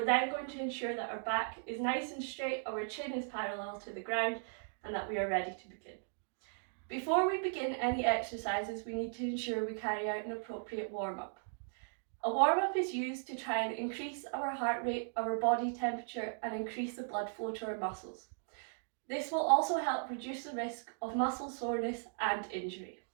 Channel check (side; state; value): left; silent; digital silence